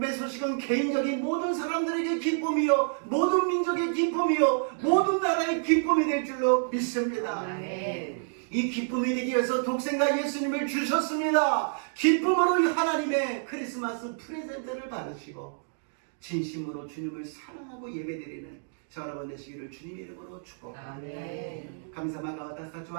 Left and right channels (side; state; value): left; silent; digital silence